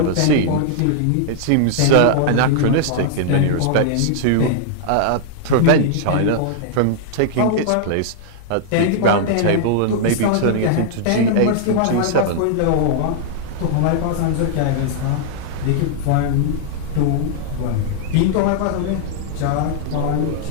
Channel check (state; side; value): different; both; correlation -0.01